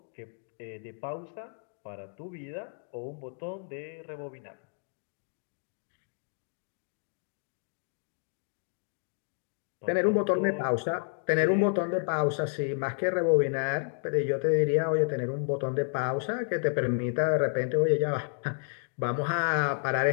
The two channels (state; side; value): silent; right; 57 dB below the other